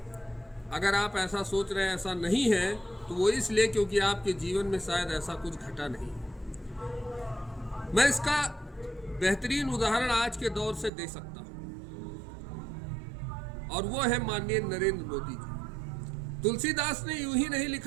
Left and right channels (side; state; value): left; drops out; at 10.9 s